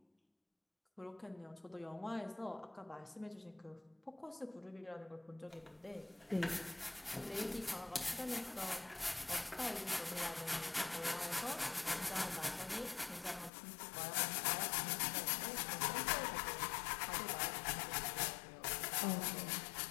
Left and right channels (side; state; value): right; drops out; at 13.5 s